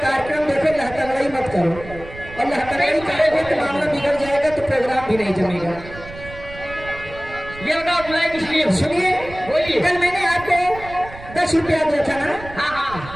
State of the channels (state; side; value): noise; right; rumble, 15 dB below the sound